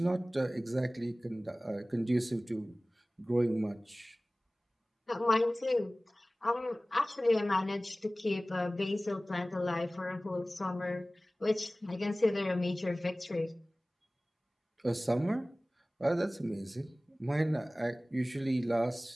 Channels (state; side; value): normal; both; correlation 0.98